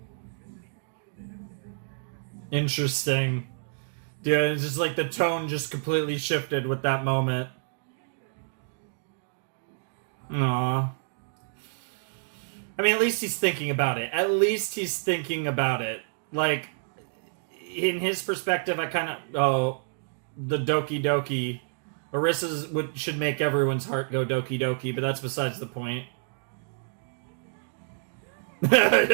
Interesting. Dude, it's just like the tone just completely shifted with that moment. Aww. I mean, at least he's thinking about it. At least he's thinking about it. Like, in his perspective, I kind of... Oh, the Doki Doki. Orissa's should make everyone's heart go Doki Doki, but that's besides the point.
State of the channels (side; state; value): left; silent; digital silence